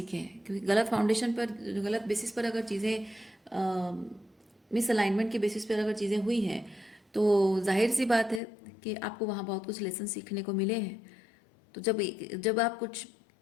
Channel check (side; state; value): right; drops out; at 8.4 s